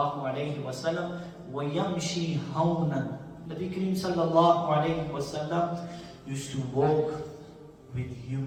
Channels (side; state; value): both; identical; correlation 1.00